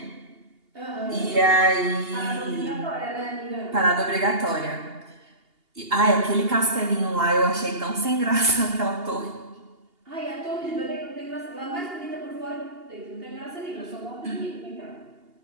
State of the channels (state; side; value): late; left; 2.8 ms